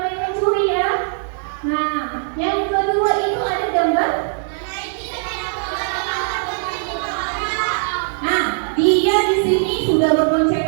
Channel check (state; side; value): silent; left; digital silence